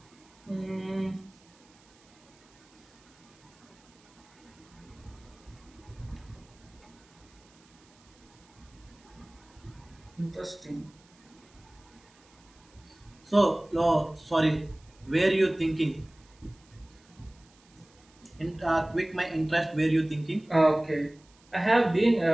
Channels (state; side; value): noise; right; hiss, 29 dB below the sound